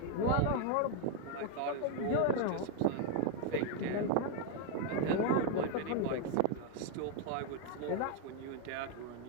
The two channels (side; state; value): both; different; correlation 0.00